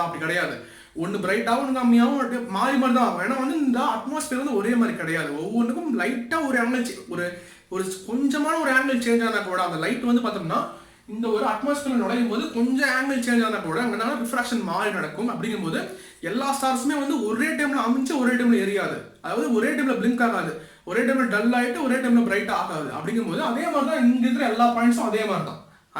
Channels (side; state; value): both; identical; correlation 1.00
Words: அப்படி கிடையாது. ஒன்று பிரைட்டாகவும் ஒன்று கம்மியாகவும் மாறி மாதிரி தான் ஆகும். ஏன்னா வந்து இந்த அட்மாஸ்பியர் வந்து ஒரே மாதிரி கிடையாது. ஒவ்வொன்றுக்கும் லைட்டாக ஒரு ஆங்கிள் ஒரு கொஞ்சமான ஒரு ஆங்கிள் சேஞ்ச் ஆனால் கூட அந்த லைட் வந்து பார்த்தோம்னா இந்த ஒரு அட்மாஸ்பியர் நுழையும் போது கொஞ்சம் ஆங்கிள் சேஞ்ச் ஆனால் கூட அங்கே ரிஃப்ராக்ஷன் மாறி நடக்கும். அப்படிங்கும்போது எல்லா ஸ்டார்ஸுமே வந்து ஒரே டைம்ல அமைஞ்சு ஒரே டைம்ல எரியாது, அதாவது ஒரே டைம்ல பிளிங்க் ஆகாது, ஒரே டைம்ல டல் ஆகிட்டு ஒரே டைம்ல பிரைட் ஆகாது. அப்படிங்கும்போது அதே மாதிரி தான் இங்க இருக்கிற எல்லா பாயிண்ட்ஸும் அதே மாதிரி தான்,